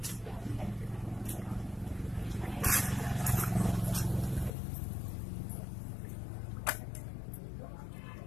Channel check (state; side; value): drops out; right; at 4.5 s